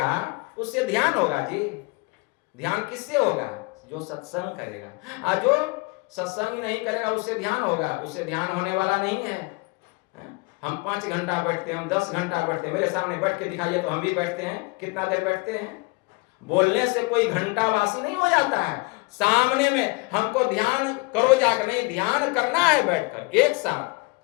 उससे ध्यान होगा जी। ध्यान किससे होगा? जो सत्संग करेगा। और जो सत्संग नहीं करेगा उससे ध्यान होगा? उससे ध्यान होने वाला नहीं है। हम 5 घंटा बैठते हैं, हम 10 घंटा बैठते हैं, मेरे सामने बैठ के दिखाइए तो हम भी बैठते हैं। कितना देर बैठते हैं? बोलने से कोई घंटा वासी नहीं हो जाता है। सामने में हमको ध्यान करो जाकर, नहीं ध्यान करना है बैठकर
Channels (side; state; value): right; quieter; 27.6 dB